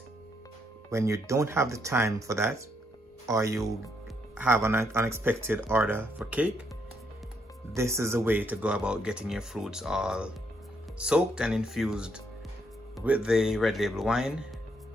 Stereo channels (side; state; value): both; normal; correlation 0.75